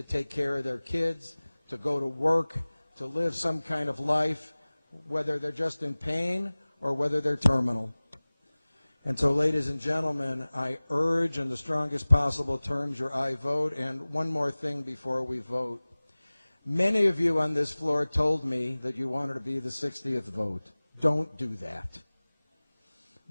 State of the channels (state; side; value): inverted; both; correlation -1.00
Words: take care of their kids, to go to work, to live some kind of life, whether they're just in pain or whether they're terminal. And so, ladies and gentlemen, I urge in the strongest possible terms your aye vote. And one more thing before we vote. Many of you on this floor told me that you wanted to be the 60th vote. Don't do that.